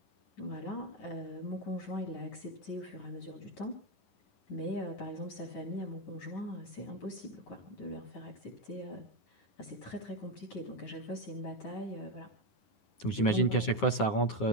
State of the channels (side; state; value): right; late; 10 ms